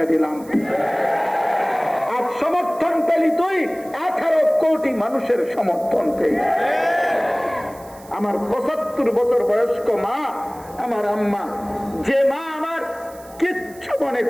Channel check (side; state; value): right; noise; hiss, 23 dB below the sound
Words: দিলাম। আর সমর্থন পেলি তুই 18 কোটি মানুষের সমর্থন পেলি। আমার 75 বছর বয়স্ক মা, আমার আম্মা, যে মা আমার কিচ্ছু